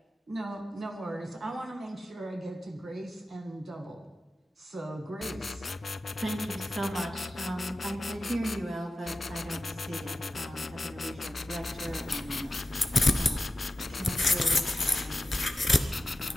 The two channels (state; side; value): normal; both; correlation 0.92